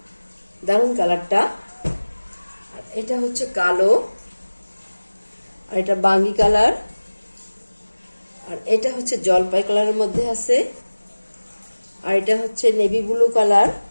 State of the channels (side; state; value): both; inverted; correlation -1.00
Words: দারুণ কালারটা। আর এটা হচ্ছে কালো, আর এটা বাঙ্গি কালার, আর এটা হচ্ছে জলপাই কালারের মধ্যে আছে, আর এটা হচ্ছে নেভি ব্লু কালার,